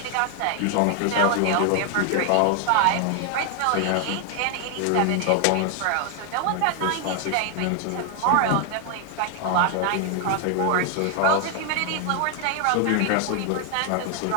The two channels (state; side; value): different; both; correlation 0.00